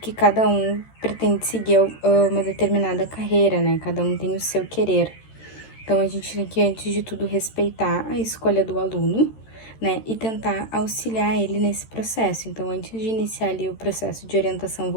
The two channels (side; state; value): right; late; 13 ms